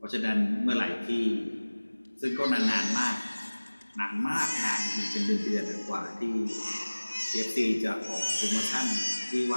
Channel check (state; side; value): inverted; both; correlation -1.00